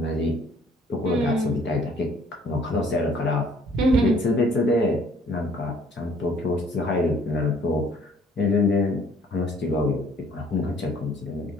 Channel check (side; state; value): both; normal; correlation 0.59